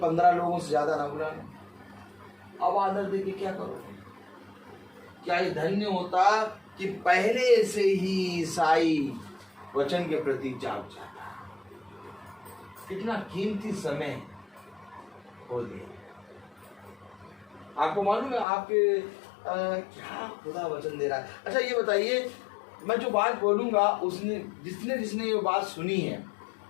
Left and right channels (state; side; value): drops out; right; at 18.4 s